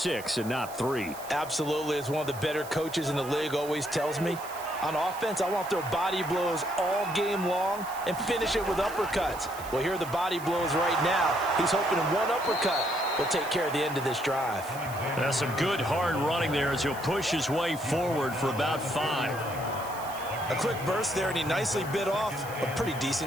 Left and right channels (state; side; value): noise; right; hiss, 16 dB below the sound